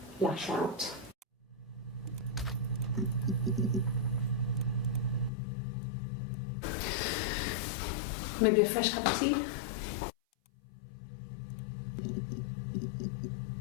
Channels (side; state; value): right; drops out; at 5.3 s